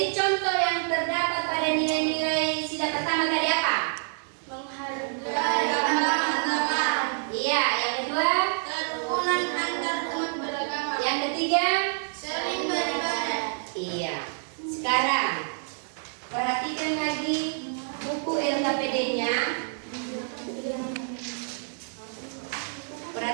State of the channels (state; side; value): silent; left; 60 dB below the other